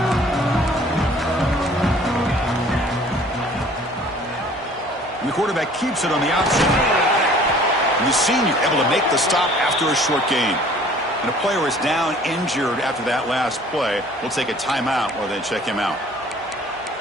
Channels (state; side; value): normal; both; correlation 0.52